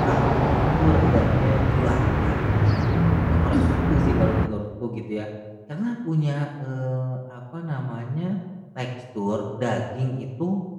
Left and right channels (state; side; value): identical; both; correlation 1.00